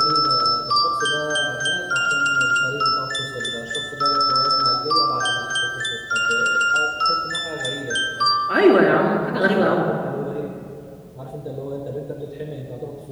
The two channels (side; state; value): both; identical; correlation 1.00